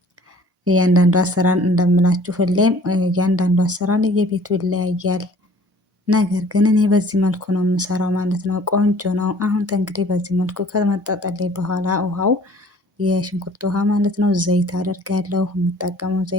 እያንዳንዱ አሰራር እንደምላችሁ ሁሌም እያንዳንዱ አሰራር የቤቱ ይለያያል። ነገር ግን እኔ በዚህ መልኩ ነው የምሰራው ማለት ነው። ቆንጆ ነው። አሁን እንግዲህ በዚህ መልኩ ከመጣጠልኝ በኋላ ውሃው የሽንኩርት ውሃ ማለት ነው፣ ዘይት አደርጋለሁ። የምጠቀመው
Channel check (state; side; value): normal; both; correlation 0.52